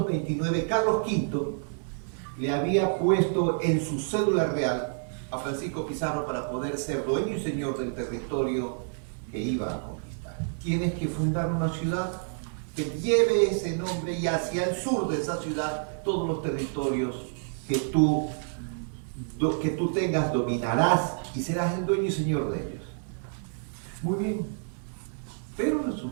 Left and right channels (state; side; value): silent; left; digital silence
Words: Carlos V le había puesto en su cédula real a Francisco Pizarro para poder ser dueño y señor del territorio que iba a conquistar. Tienes que fundar una ciudad que lleve ese nombre, y hacia el sur de esa ciudad todos los territorios que tú tengas dominarás y serás el dueño y señor de ellos. Muy bien, pero